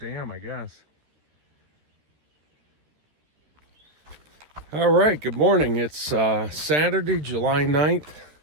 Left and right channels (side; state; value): left; late; 13 ms